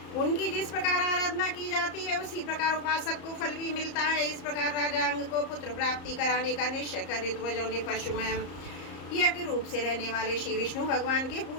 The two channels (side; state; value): right; late; 34 ms